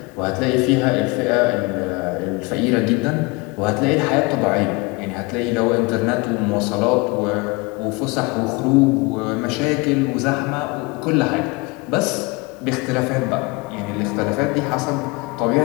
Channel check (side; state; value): right; quieter; 26.0 dB